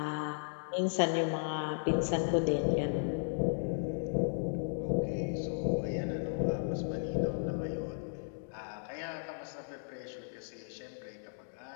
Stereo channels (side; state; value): right; silent; digital silence